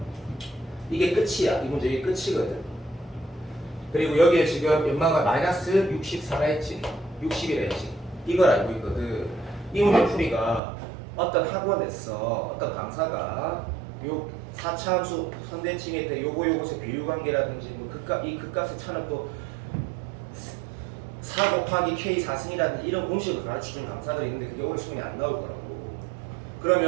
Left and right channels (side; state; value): left; drops out; at 10.6 s